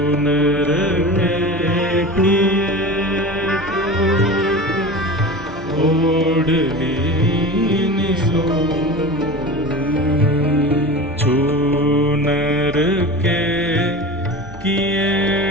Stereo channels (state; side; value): normal; both; correlation 0.31